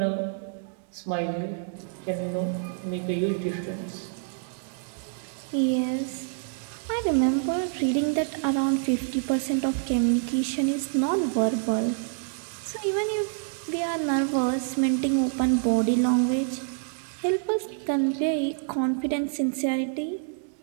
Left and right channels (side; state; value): left; silent; digital silence